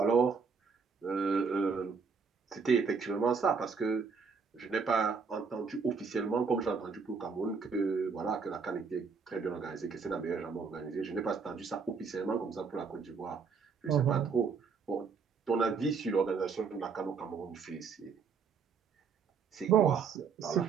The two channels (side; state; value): left; quieter; 5.5 dB